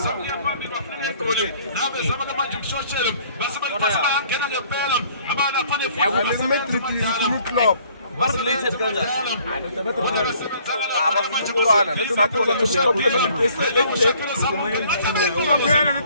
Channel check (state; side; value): inverted; both; correlation -0.59